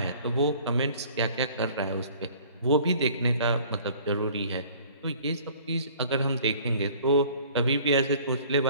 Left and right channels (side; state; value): both; inverted; correlation -0.52